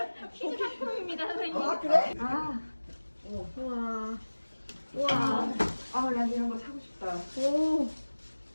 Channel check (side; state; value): both; inverted; correlation -1.00